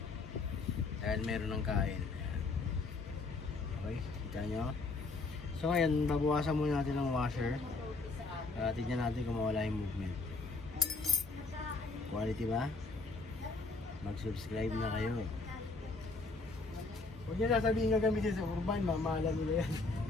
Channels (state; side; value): quieter; right; 3.7 dB